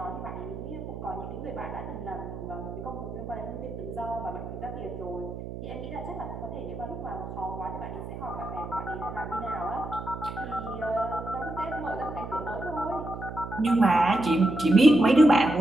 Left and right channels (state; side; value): noise; right; hum, 9 dB below the sound